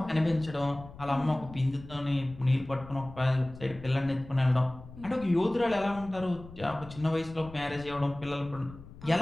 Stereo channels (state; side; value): noise; left; rumble, 17 dB below the sound